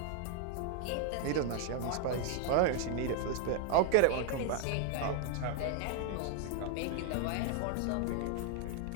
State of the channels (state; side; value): different; both; correlation 0.00